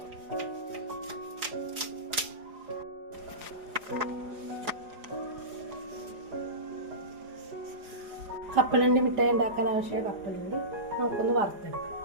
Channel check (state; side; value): late; left; 4.9 ms